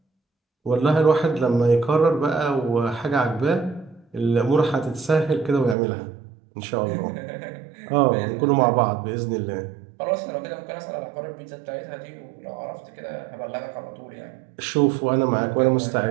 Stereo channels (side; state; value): left; drops out; at 5.8 s